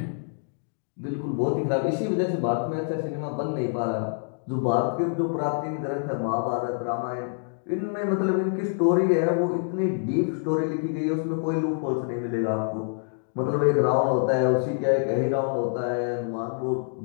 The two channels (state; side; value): silent; right; digital silence